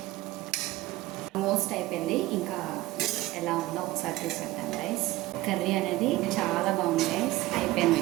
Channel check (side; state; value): left; quieter; 17.8 dB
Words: ఆల్మోస్ట్ అయిపోయింది, ఇంకా ఎలా ఉందో ఒకసారి చూసేద్దాం గైస్. కర్రీ అనేది చాలా బాగుంది గైస్. అయిపోయింది,